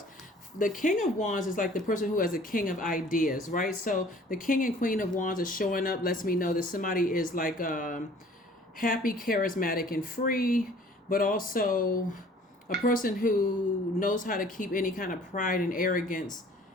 The King of Wands is like the person who has a king of ideas, right? So the King and Queen of Wands is showing up, lets me know that somebody is like happy, charismatic, and free, but also a person who knows how to keep any kind of pride and arrogance,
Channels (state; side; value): normal; both; correlation 0.52